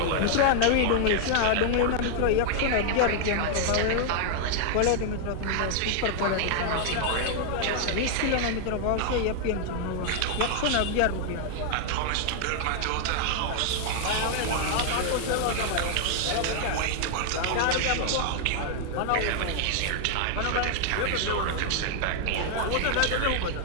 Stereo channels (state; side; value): different; both; correlation 0.00